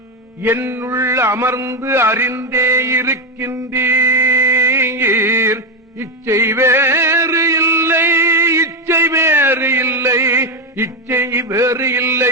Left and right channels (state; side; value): normal; both; correlation 0.08